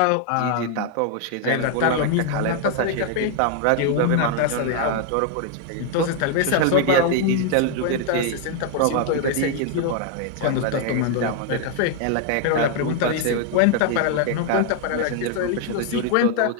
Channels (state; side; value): different; both; correlation 0.00